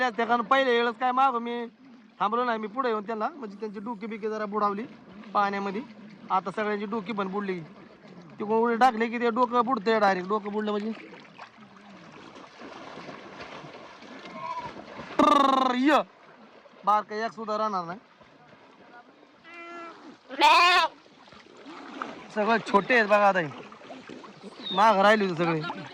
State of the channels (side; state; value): both; identical; correlation 1.00